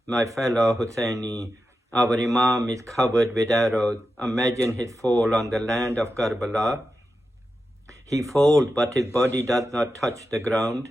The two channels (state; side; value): normal; both; correlation 0.90